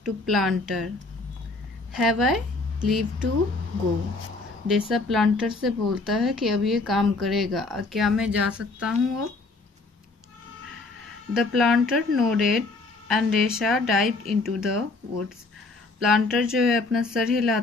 to planter, have I leave to go. Deesa planter से बोलता है कि अब ये काम करेगा, क्या मैं जा सकता हूँ अब? The planter nodded and Deesa dived into the woods. Planter जो है अपना सर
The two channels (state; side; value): quieter; right; 3.5 dB